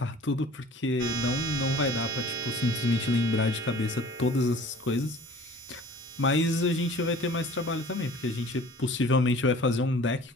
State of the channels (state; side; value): normal; both; correlation 0.47